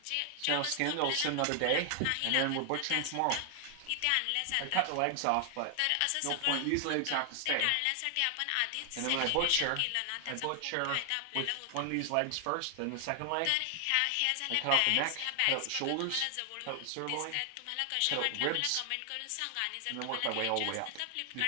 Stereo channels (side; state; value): both; different; correlation 0.00